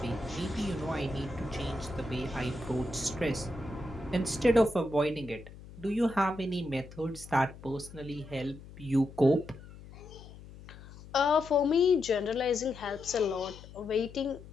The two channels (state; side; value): noise; left; hum, 17 dB below the sound